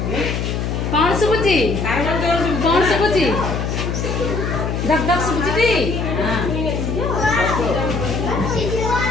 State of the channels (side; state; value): left; noise; hum, 2 dB below the sound